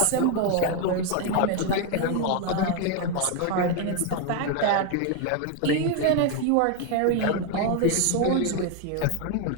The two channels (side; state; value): both; different; correlation 0.01